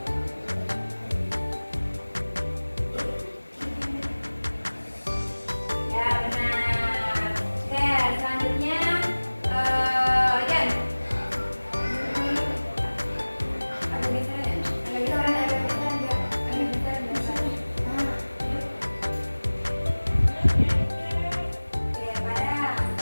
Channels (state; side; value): inverted; both; correlation -1.00